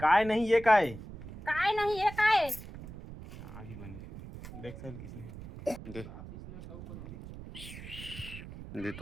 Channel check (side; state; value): right; noise; rumble, 13 dB below the sound